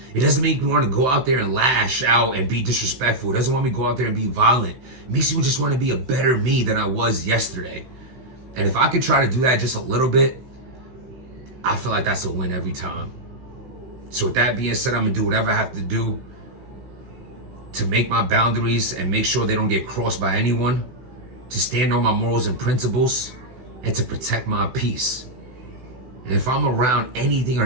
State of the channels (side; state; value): left; late; 16 ms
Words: It doesn't make me want to go out there and lash out and be disrespectful. It doesn't want me to go out there and be violent. It makes me just want to be a better me than I was yesterday. And if I could try to do that just a little bit, I feel like that's a win every time. So with that being said, I'm going to do whatever I have to do to make my boundaries and make sure they don't get crossed by anyone, to stand on my morals and principles, and to protect my peace. And if I'm around anything